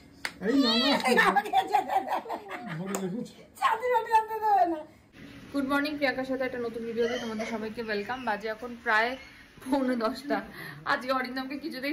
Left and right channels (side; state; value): both; identical; correlation 1.00